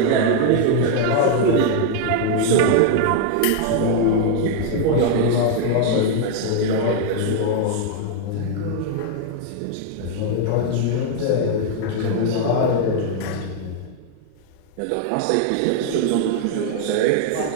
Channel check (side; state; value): both; different; correlation 0.00